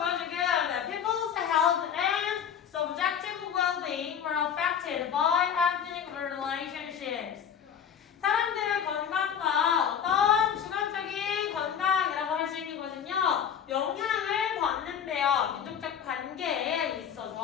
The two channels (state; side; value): quieter; right; 8.1 dB